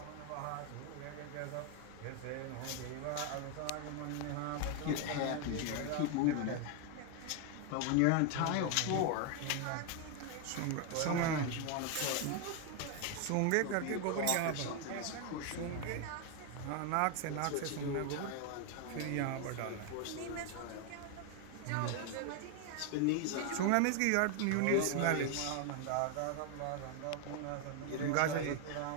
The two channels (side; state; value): both; different; correlation 0.01